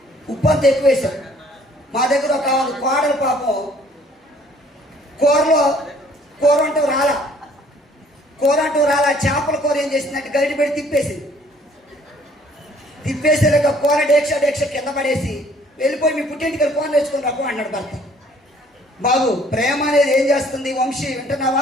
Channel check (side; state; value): both; normal; correlation 0.58